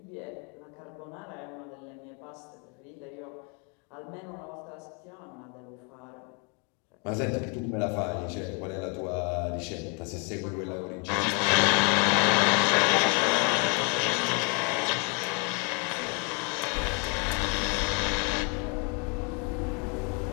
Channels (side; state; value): right; quieter; 35.2 dB